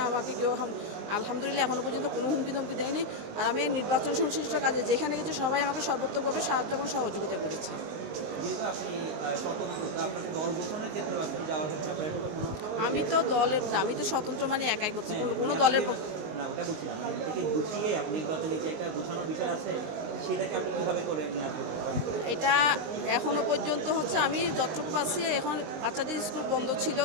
আমাকে কেউ আলহামদুলিল্লাহ এখনও পর্যন্ত কোনো হুমকি ধমকি দেয়নি। আর আমি এই নির্বাচন সংশ্লিষ্ট কাজে যেখানে গেছি সবাই আমাকে সর্বোত্তভাবে সাহায্য এবং সহযোগিতা করেছে। আমি তো দলের না, আমি তো স্বতন্ত্র মানে একাই করছি, কোনো দলের না ওটা বলছি না, মানে এটাকে গুছিয়ে আপনি নির্বাচনে যে একটা গোছানোর বিষয় আছে সেটাকে আপনি কীভাবে করে নিয়ে আসবেন? এটা এখনও পর্যন্ত হচ্ছে আমি যতটুকু পাচ্ছি, এখন বাচ্চাদের স্কুল বন্ধ ছিল,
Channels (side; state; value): left; late; 19 ms